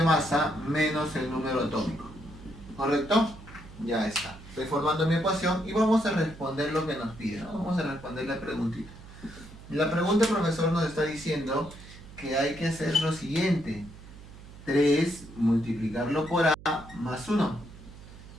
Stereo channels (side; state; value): right; noise; hum, 17 dB below the sound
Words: masa menos el número atómico. ¿Correcto? Ya está. Estoy formando mi ecuación y vamos a responder lo que nos pide, ¿no? Vamos a responder la preguntita. La pregunta, profesor, nos está diciendo que hay que hacer lo siguiente. 3 multiplicarlo por A más 1.